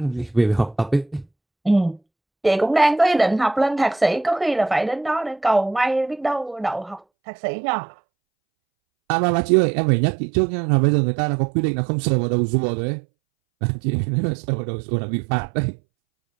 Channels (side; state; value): left; drops out; at 7.0 s